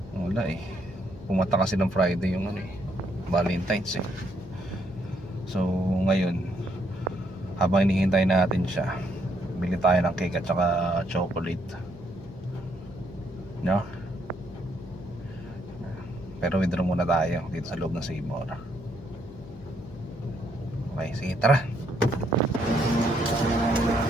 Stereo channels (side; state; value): left; noise; hum, 17 dB below the sound